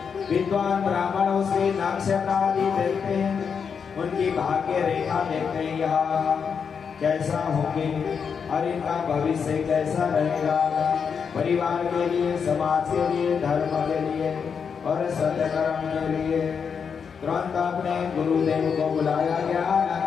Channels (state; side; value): quieter; right; 6.4 dB